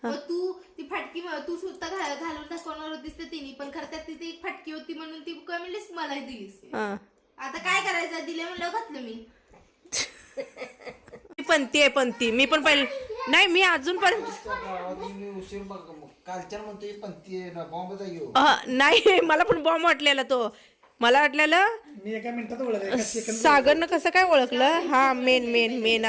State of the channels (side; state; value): both; identical; correlation 1.00